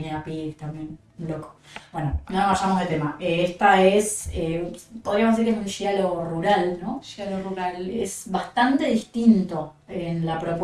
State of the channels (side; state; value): both; identical; correlation 1.00